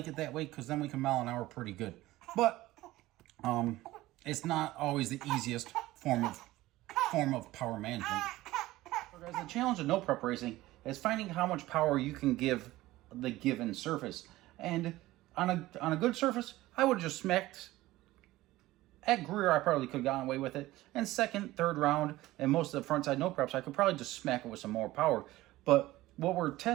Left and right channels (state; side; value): quieter; left; 17.3 dB